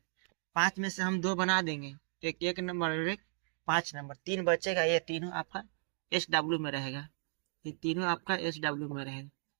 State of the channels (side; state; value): left; silent; 54 dB below the other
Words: 5 में से हम 2 बना देंगे, एक नंबर और एक 5 नंबर। 3 बचेगा, ये तीनों आपका SW में रहेगा, तो तीनों आपका SW में रहेगा।